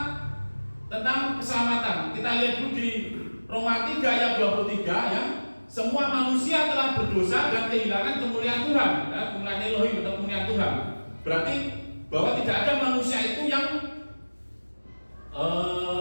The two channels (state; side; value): inverted; both; correlation -1.00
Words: tentang keselamatan. Kita lihat dulu di Roma 3 ayat 23 ya. Semua manusia telah berdosa dan kehilangan kemuliaan Tuhan, ya, kemuliaan Elohim atau kemuliaan Tuhan. Berarti bahwa tidak ada manusia itu yang